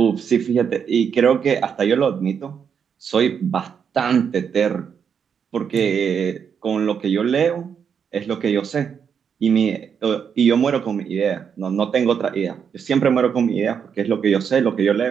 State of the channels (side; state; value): left; quieter; 7.2 dB